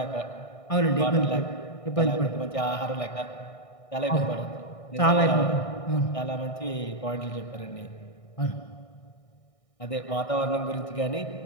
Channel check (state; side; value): late; right; 1.6 ms